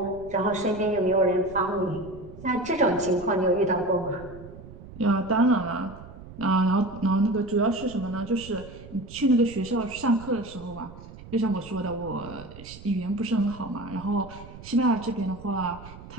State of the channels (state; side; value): noise; right; rumble, 16 dB below the sound